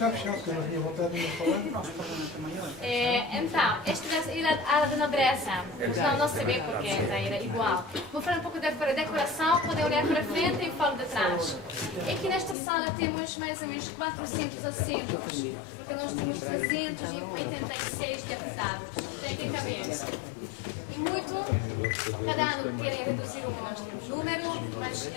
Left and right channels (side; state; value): right; drops out; at 12.6 s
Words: fechado, que eu não tinha vontade de me falar. Então, esta é a ala de nobreza, mas não se vê porque era igual. Vou falar um pouco da decoração, podem olhar para frente e falo de trás. Aqui nesta sala temos mais ou menos 400 assentos, porque nós temos 386 deputados. Tem que caber. E muito, cada ano querem reduzir o número, mas